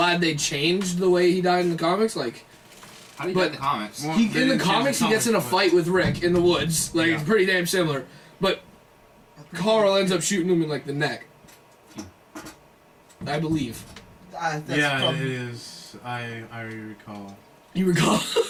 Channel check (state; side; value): identical; both; correlation 1.00